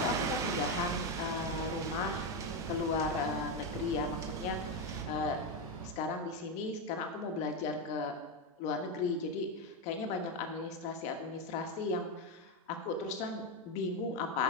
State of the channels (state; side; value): normal; both; correlation 0.09